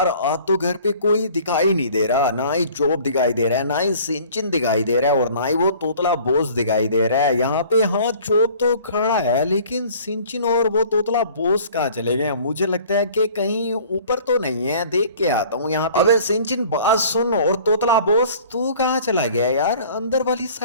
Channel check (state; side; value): inverted; both; correlation -0.50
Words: आज तो घर पे कोई दिखाई नहीं दे रहा, ना ही चोप दिखाई दे रहा है, ना ही सिंचिन दिखाई दे रहा है, और ना ही वो तोतला बोस दिखाई दे रहा है। यहाँ पे हाँ, चोप तो खड़ा है, लेकिन सिंचिन और वो तोतला बोस कहाँ चले गए? मुझे लगता है कि कहीं ऊपर तो नहीं है, देख के आता हूँ यहाँ पे। अबे सिंचिन, बात सुन, और तोतला बोस तू कहाँ चला गया यार? अंदर वाली